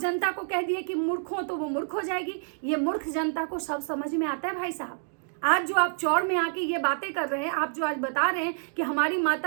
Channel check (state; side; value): silent; left; digital silence